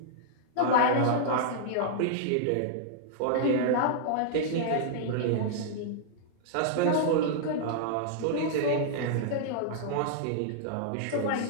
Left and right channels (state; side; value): different; both; correlation -0.02